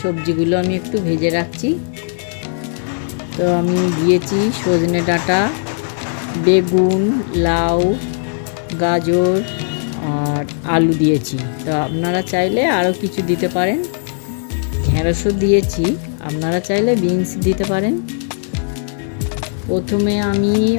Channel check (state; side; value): silent; right; digital silence